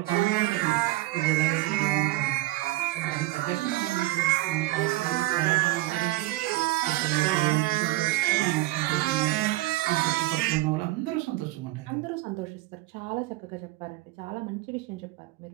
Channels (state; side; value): quieter; left; 18.6 dB